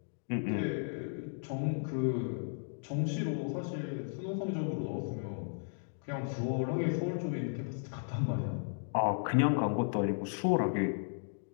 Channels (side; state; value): right; silent; digital silence